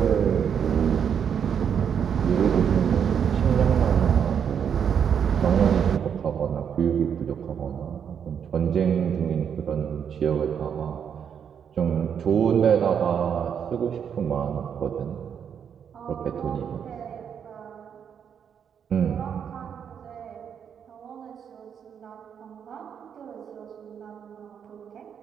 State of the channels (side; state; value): left; quieter; 7.9 dB